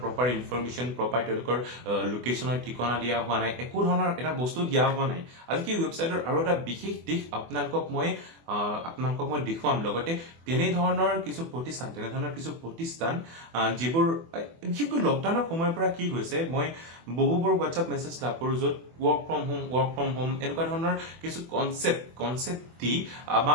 প্ৰপাৰ ইনফৰমেশ্যন প্ৰপাৰ তেওঁলোকৰ লোকেশ্যনৰ ঠিকনা দিয়া হোৱা নাই একো ধৰণৰ এটা বস্তু দিয়া হোৱা নাই আজি সেই ৱেবছাইটৰ আৰু এটা বিশেষ দিশ আপোনালোকক মই দেখুৱাম লগতে তেনেধৰণৰ কিছু প্ৰতিষ্ঠান যিবোৰ বিশেষকৈ লকডাউনৰ সময়ৰ পৰা কি হৈছে মই বহুবোৰ হোৱাটছআপ মেছেজ লাভ কৰোঁ য'ত ৱৰ্ক ফ্ৰম হোম এনেকুৱা ধৰণৰ কিছু কনচেপ্ট দি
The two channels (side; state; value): left; late; 24 ms